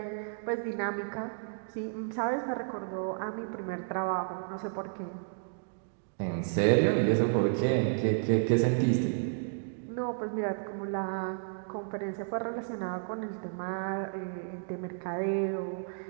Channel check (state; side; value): silent; left; digital silence